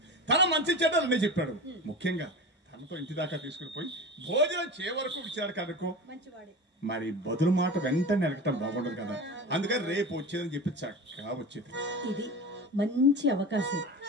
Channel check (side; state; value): both; normal; correlation 0.30